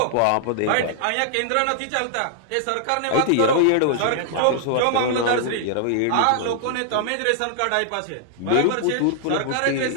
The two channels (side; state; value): both; different; correlation -0.01